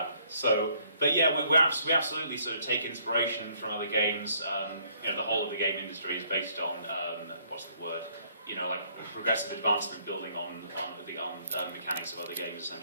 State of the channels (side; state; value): both; inverted; correlation -0.65